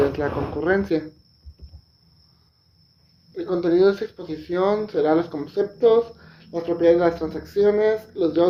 es la concurrencia. El contenido de esta exposición será los conceptos, las propiedades de las transacciones, los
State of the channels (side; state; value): both; identical; correlation 1.00